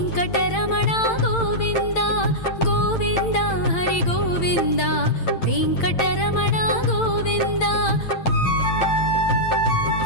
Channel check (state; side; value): late; right; 8.9 ms